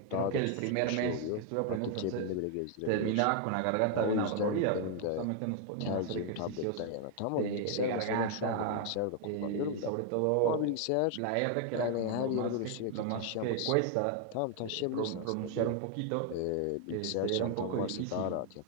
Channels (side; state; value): both; different; correlation 0.00